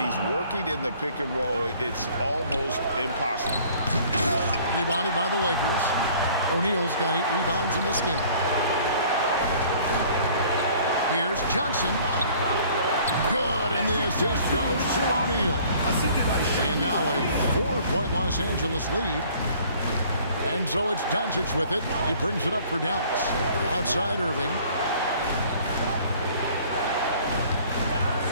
he's working in the pick and roll, it's almost impossible. Rebounded by the Lakers. O'Neal's got 8 rebounds in this game. Here's Johnson. Good, and the assist goes to O'Neal. And now a 4-point Los Angeles lead. And so it's Doncic with it. He brings it up for Dallas. Outside Irving.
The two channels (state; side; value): inverted; both; correlation -0.54